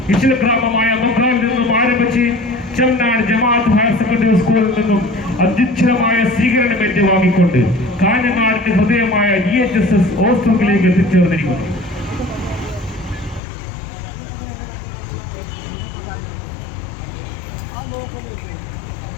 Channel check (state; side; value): drops out; right; at 13.4 s